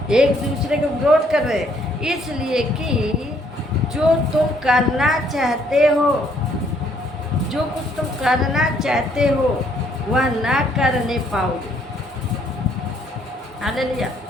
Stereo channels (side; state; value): both; normal; correlation 0.67